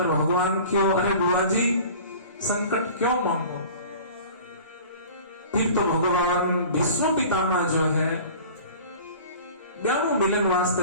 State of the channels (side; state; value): both; inverted; correlation -0.42